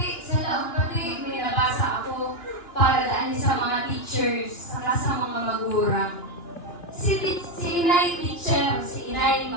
sa laong pati, may nabasa ako para daan sa mga teachers, saka sa mga magurang. Si inay teacher, si inay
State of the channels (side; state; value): right; late; 2.9 ms